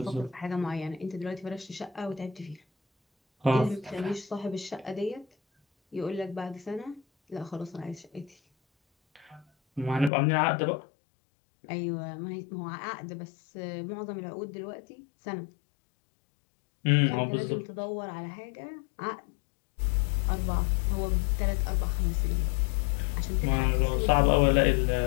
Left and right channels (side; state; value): right; drops out; at 10.1 s